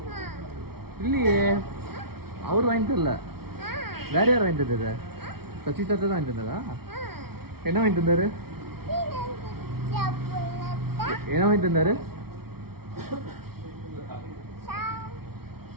இல்லையே அவர் வாங்கி தரல வேற யார் வாங்கி தந்தது சசி தாத்தா தான் வாங்கி தந்ததா என்ன வாங்கி தந்தாரு என்ன வாங்கி தந்தாரு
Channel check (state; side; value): late; left; 0.95 ms